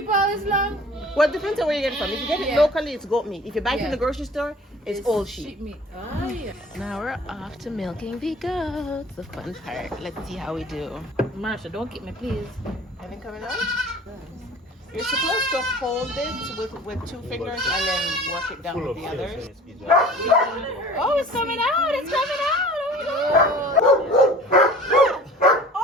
all this long. Well, it depends on where you get it from. If you get it locally, it's goat meat. If you buy it from the grocery store, it's old sheep. meat. Oh, yeah. Now we're off to milking the goats. The fun part. Let's see how we do. Marsha, don't keep me, please. Anything coming out? You're supposed to hold it with 2 fingers and then work it down with the others. Oh, it's coming out. It's coming out.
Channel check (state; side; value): normal; both; correlation 0.45